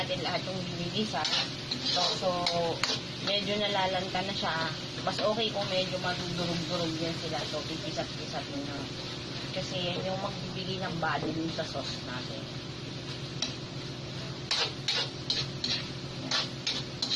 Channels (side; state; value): both; identical; correlation 1.00